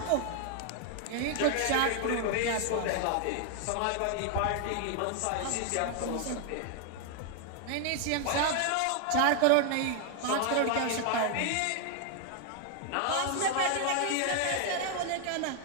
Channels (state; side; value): different; both; correlation 0.00